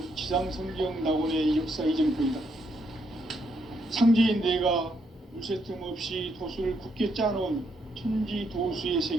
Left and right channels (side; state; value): both; normal; correlation 0.76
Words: 지상성경 낙원의 역사 이정표이다. 상제인 내가 물새 틈 없이 도수를 굳게 짜놓은 천지 도수의